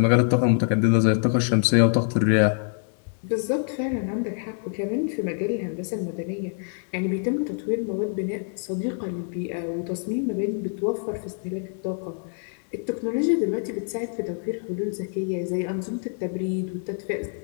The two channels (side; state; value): right; silent; 61 dB below the other